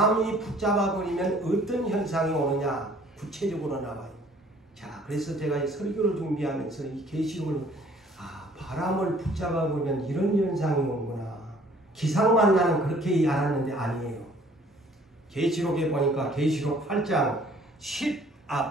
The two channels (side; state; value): both; normal; correlation 0.56